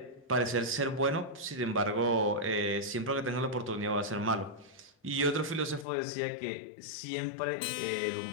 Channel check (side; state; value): right; drops out; at 5.9 s